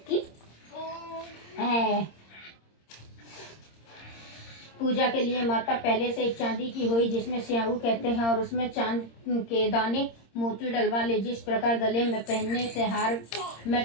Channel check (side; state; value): right; late; 26 ms